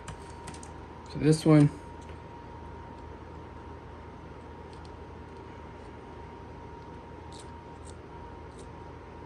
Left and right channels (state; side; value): identical; both; correlation 1.00